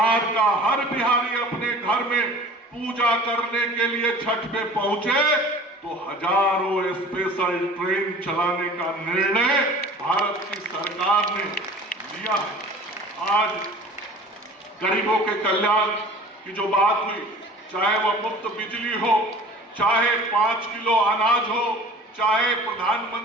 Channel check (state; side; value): normal; both; correlation 0.43